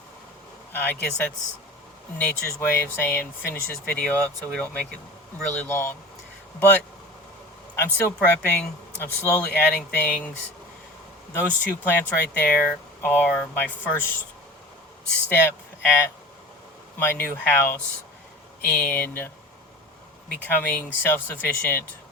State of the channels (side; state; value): both; normal; correlation 0.36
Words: I guess that's nature's way of saying finish this video up so we don't make it really long. But I'm still prepping. I'm slowly adding things. Those two plants right there are my first step at my new house in becoming self-sufficient